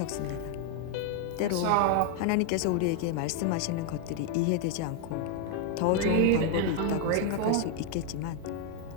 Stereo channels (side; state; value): both; different; correlation 0.00